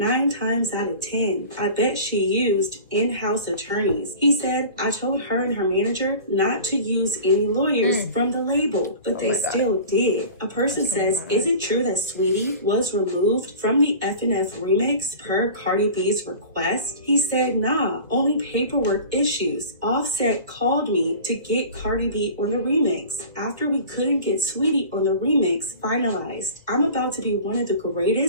times out of 10, I bet she used in-house attorneys. He said, I told her and her manager not to use any lawyers from the label, but they still did. A person says, is it true that Sweetie was removed from the F&F remix per Cardi B's request? He said, nah, only paperwork issues. Offset called me to get Cardi B on the remix after we couldn't get Sweetie on the remix finalized. I'm about to be one of the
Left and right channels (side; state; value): both; inverted; correlation -0.39